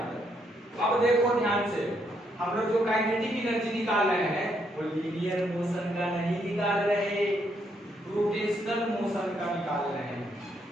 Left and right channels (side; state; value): both; normal; correlation 0.75